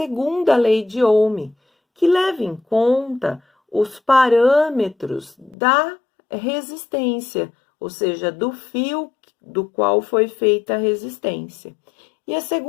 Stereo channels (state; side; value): drops out; right; at 5.6 s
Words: lei de Ohm, que leva em conta os parâmetros da resistência, ou seja, do fio do qual foi feita a resistência. E a